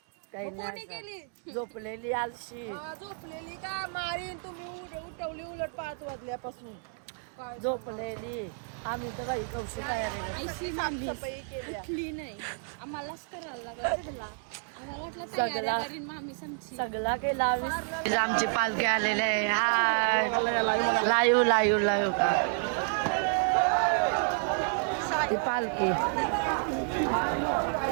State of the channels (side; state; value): left; silent; 57 dB below the other